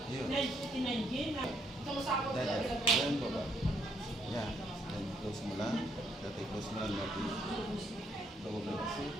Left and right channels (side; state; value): both; normal; correlation 0.72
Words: Yun. Then baba. Yeah. Then close mo lang. Dati close mo lang natin. Baba kasi.